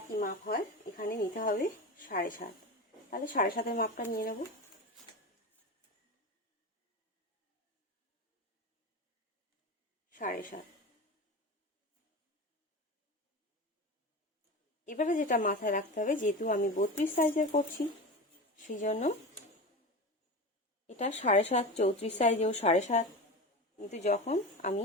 মাপ হয়, এখানে নিতে হবে 7.5। তাহলে 7.5-এর মাপটা নিয়ে নেব। এবারে যেটা মাথায় রাখতে হবে, যেহেতু আমি 32 সাইজের করছি সেই জন্য এটা 7.5, 34 সাইজেও 7.5। কিন্তু যখন আমি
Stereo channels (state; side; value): normal; both; correlation 0.27